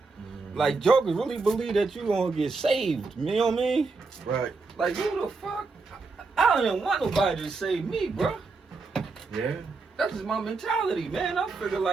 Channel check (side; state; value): left; quieter; 4.1 dB